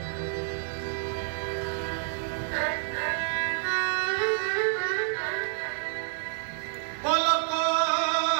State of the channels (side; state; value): left; silent; digital silence